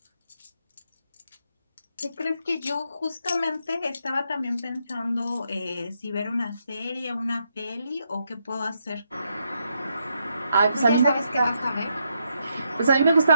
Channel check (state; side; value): inverted; both; correlation -0.79